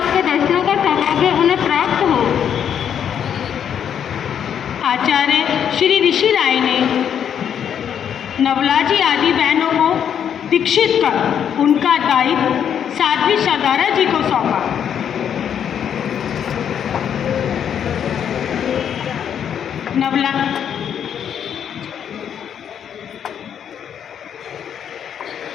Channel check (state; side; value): quieter; right; 8.6 dB